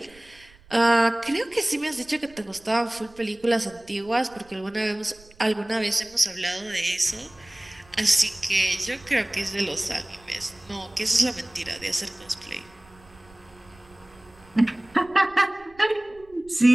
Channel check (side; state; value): right; noise; rumble, 26 dB below the sound